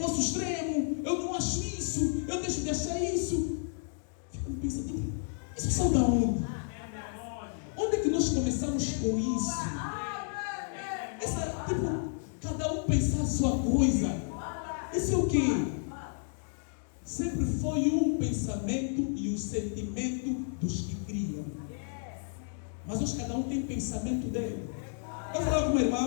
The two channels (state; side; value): silent; right; digital silence